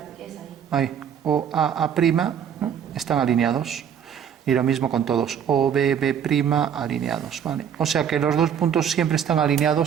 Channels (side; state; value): left; quieter; 8.3 dB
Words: ahí. Ahí. O A', ¿no? Están alineados. Y lo mismo con todos. O B, B' alineados, ¿vale? O sea que los 2 puntos siempre están